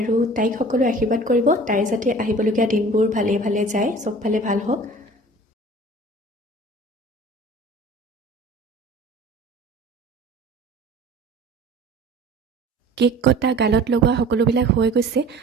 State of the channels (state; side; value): normal; both; correlation 0.44